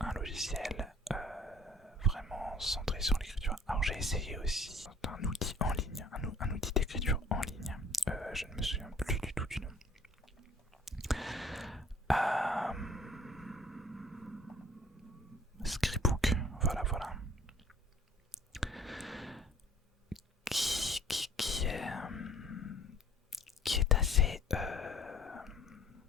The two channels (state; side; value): normal; both; correlation 0.54